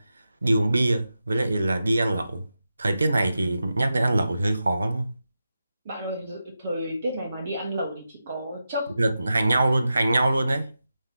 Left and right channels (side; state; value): both; inverted; correlation -0.91